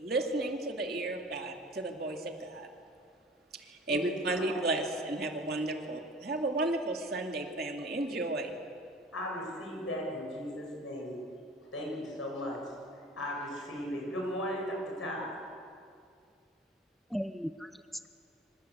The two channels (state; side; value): normal; both; correlation 0.43